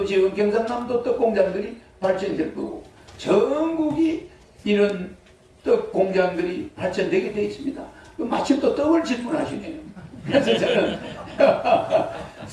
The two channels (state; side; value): identical; both; correlation 1.00